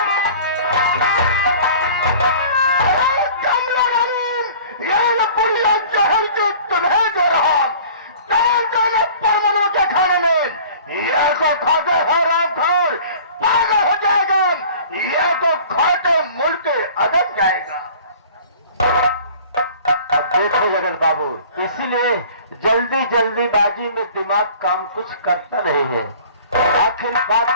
जाएगा। अब देखो जगत बाबू, इसीलिए जल्दी जल्दीबाजी में दिमाग काम कुछ करता नहीं है। आखिर बात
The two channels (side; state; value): both; inverted; correlation -0.46